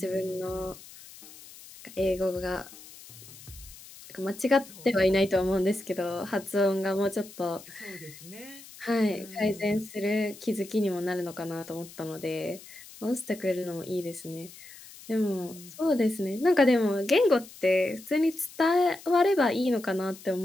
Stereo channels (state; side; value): noise; left; hiss, 18 dB below the sound